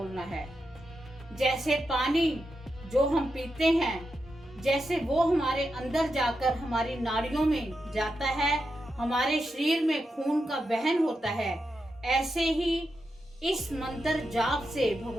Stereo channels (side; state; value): both; normal; correlation 0.87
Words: है। जैसे पानी जो हम पीते हैं, जैसे वो हमारे अंदर जाकर हमारी नाड़ियों में जाता है, हमारे शरीर में खून का वहन होता है, ऐसे ही इस मंत्र जाप से